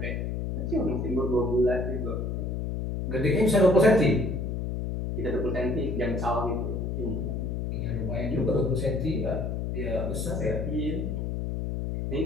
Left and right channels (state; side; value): noise; left; hum, 2 dB below the sound